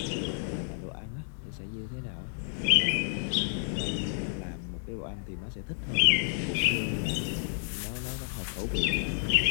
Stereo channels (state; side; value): silent; right; digital silence